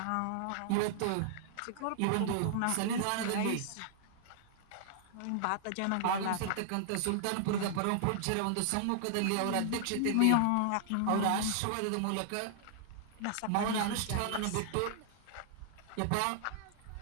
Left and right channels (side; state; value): both; different; correlation -0.01